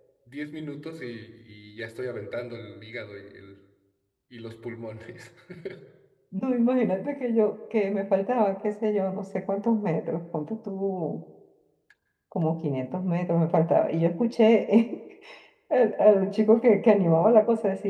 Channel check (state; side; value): identical; both; correlation 1.00